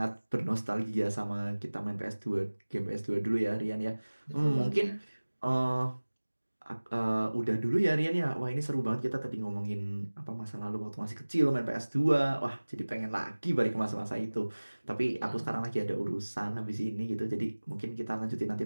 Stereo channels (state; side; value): inverted; both; correlation -1.00